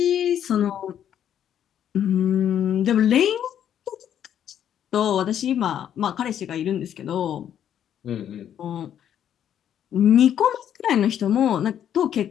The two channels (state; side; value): quieter; right; 9.8 dB